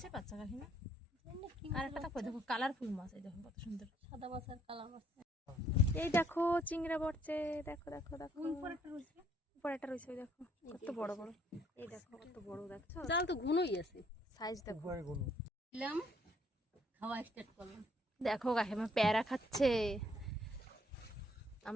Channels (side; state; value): both; normal; correlation 0.66